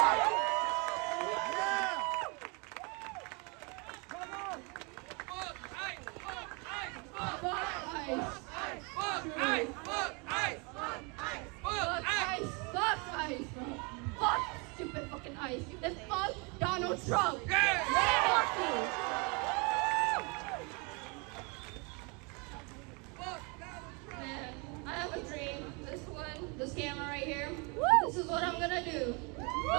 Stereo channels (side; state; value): left; quieter; 31.2 dB